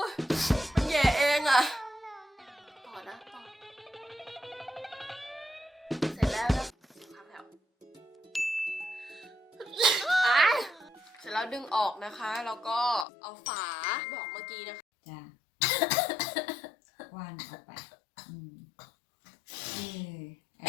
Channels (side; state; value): right; drops out; at 13.1 s